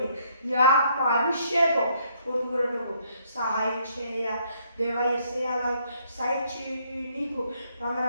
నీ ఆత్మ అభిషేకం పొందుకున్నట్టుకు సహాయం చేయ. దేవా యేసయ్యా, సాయించి నీకు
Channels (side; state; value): both; inverted; correlation -0.68